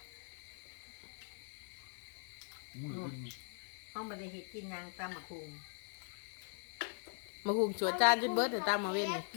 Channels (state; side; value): silent; right; 51 dB below the other